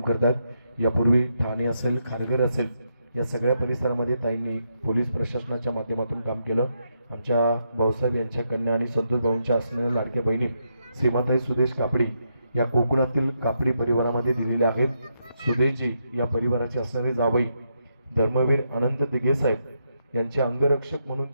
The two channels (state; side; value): inverted; both; correlation -0.80